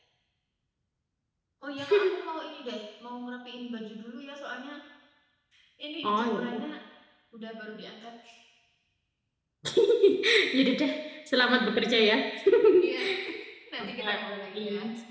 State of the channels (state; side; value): identical; both; correlation 1.00